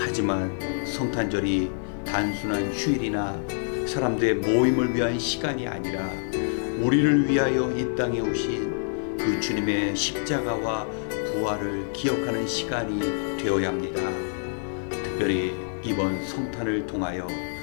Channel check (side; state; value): right; silent; digital silence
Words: 성탄절이 단순한 휴일이나 사람들의 모임을 위한 시간이 아니라 우리를 위하여 이 땅에 오신 그 주님의 십자가와 부활을 기억하는 시간이 되어야 합니다. 특별히 이번 성탄을 통하여